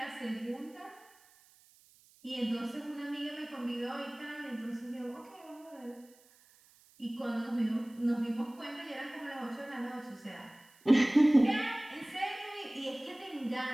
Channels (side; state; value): right; noise; hiss, 28 dB below the sound